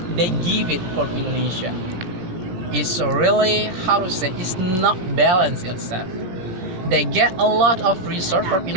they give it from Indonesia. It's really, how to say, it's not balanced itself. They get a lot of resource from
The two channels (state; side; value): late; left; 17 ms